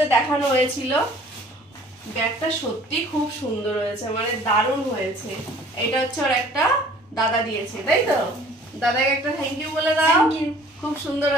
দেখানো হয়েছিল। ব্যাগটা সত্যি খুব সুন্দর হয়েছে, মানে দারুণ হয়েছে। এটা হচ্ছে ওর একটা দাদা দিয়েছে, তাই তো? দাদাকে একটা থ্যাংক ইউ বলে দাও। খুব সুন্দর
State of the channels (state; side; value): normal; both; correlation 0.52